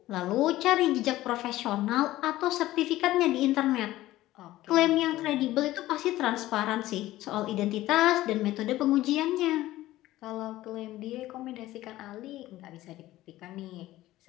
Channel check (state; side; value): quieter; right; 15.9 dB